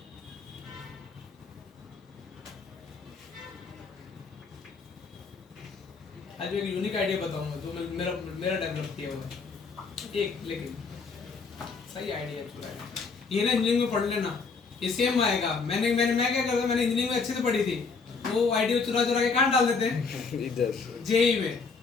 आज भी एक यूनिक आइडिया बताऊंगा जो मेरा मेरा डेवलप किया हुआ है एक, लेकिन सही आइडिया चुरा है ये ना। इंजीनियरिंग में पढ़ लेना, ये सेम आएगा। मैं क्या करता, मैंने इंजीनियरिंग में अच्छे से पढ़ी थी, वो आइडिया चुरा चुरा के कहाँ डाल देते हैं इधर जेई में,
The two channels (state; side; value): quieter; right; 4.8 dB